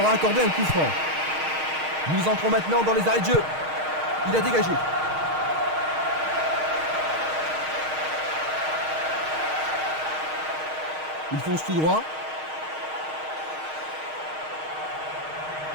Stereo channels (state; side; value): late; left; 6.4 ms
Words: a accordé un coup franc. Nous entrons maintenant dans les arrêts de jeu. Il a dégagé. Il fonce tout droit.